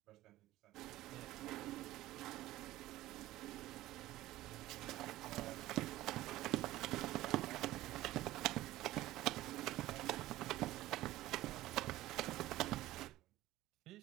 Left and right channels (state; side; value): quieter; left; 16.1 dB